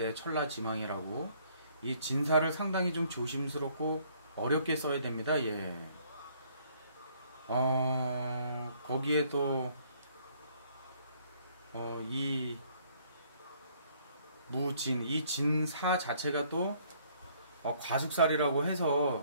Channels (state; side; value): inverted; both; correlation -0.63